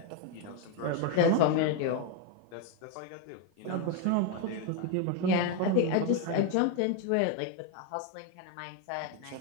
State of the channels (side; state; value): both; different; correlation 0.02